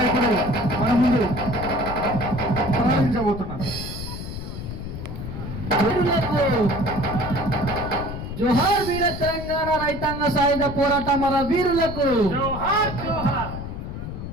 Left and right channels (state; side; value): noise; left; rumble, 8 dB below the sound